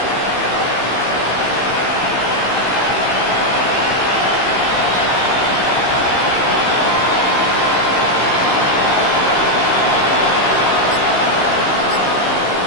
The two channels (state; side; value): late; right; 15 ms